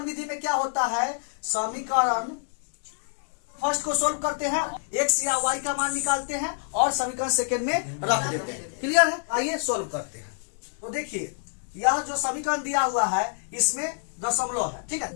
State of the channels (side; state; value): right; silent; digital silence